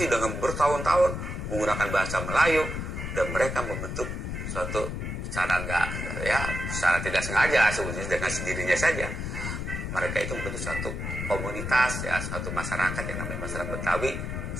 dengan bertahun-tahun menggunakan bahasa Melayu, dan mereka membentuk suatu secara tidak sengaja sebetulnya dengan sendirinya saja. Mereka itu membentuk suatu komunitas ya, suatu masyarakat yang namanya masyarakat Betawi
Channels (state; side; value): noise; left; rumble, 4 dB below the sound